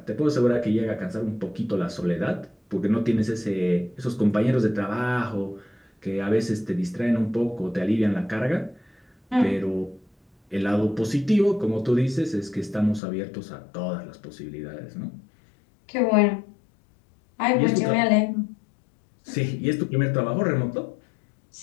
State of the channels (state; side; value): drops out; right; at 13.0 s